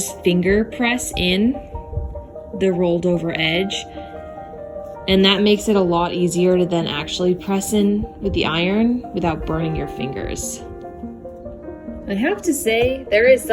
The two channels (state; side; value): identical; both; correlation 1.00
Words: finger press in the rolled over edge. And that makes it a lot easier to then actually press in with the iron without burning your fingers. I have to say, there is